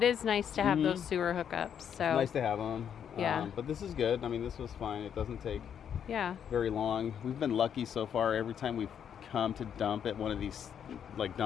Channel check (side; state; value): right; quieter; 8.5 dB